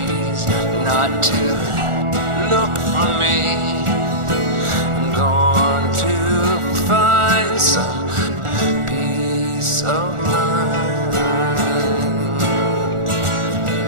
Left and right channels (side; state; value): left; late; 1.4 ms